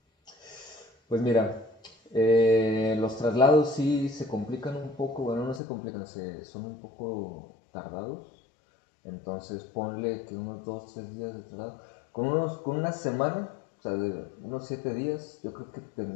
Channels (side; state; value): right; drops out; at 5.6 s